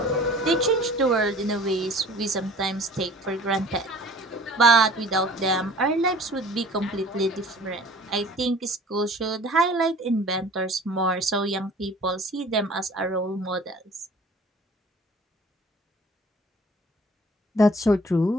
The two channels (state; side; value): normal; both; correlation 0.48